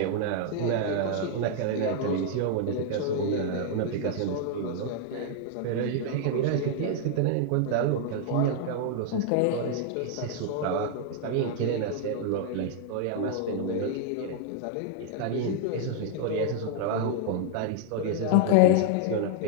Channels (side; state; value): both; different; correlation -0.01